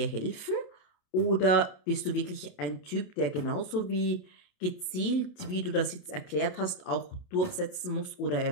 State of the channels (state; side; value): late; right; 27 ms